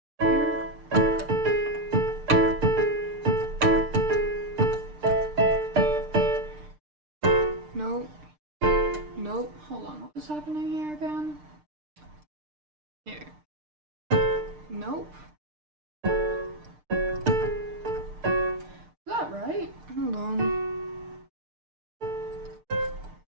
nope. Nope. Hold on. What was happening here again? Here. Nope. Is that right? Hold on.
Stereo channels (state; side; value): late; left; 6.6 ms